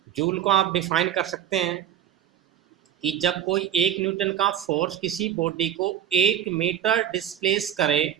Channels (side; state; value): left; quieter; 10.2 dB